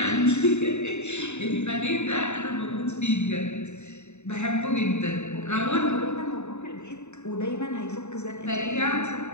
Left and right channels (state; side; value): late; right; 0.82 ms